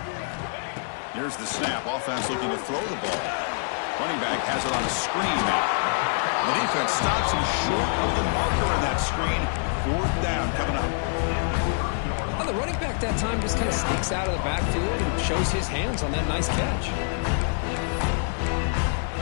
Here's the snap. Offense looking to throw the ball. Running back has it on a screen now. The defense stops him short of the marker in that screen. 4th down coming up. Well, the running back that time just kind of sneaks out of the backfield and shows his hands on that nice catch.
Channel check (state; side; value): silent; right; 61 dB below the other